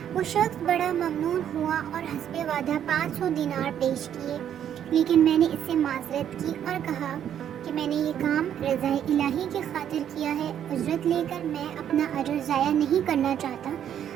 وہ شخص بڑا ممنون ہوا اور حسب وعدہ 500 دینار پیش کیے، لیکن میں نے اس سے معذرت کی اور کہا کہ میں نے یہ کام رضا الہی کی خاطر کیا ہے، اجرت لے کر میں اپنا اجر ضائع نہیں کرنا چاہتا۔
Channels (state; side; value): quieter; left; 9.7 dB